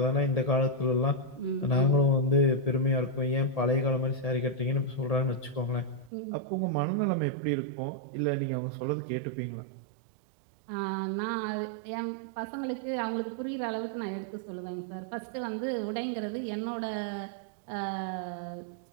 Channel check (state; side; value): drops out; left; at 6.1 s